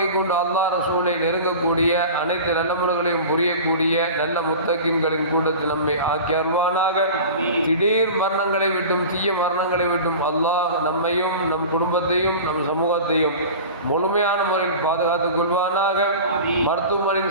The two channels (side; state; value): both; inverted; correlation -0.35